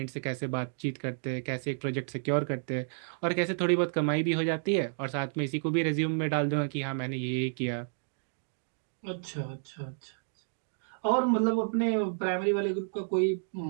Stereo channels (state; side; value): silent; left; digital silence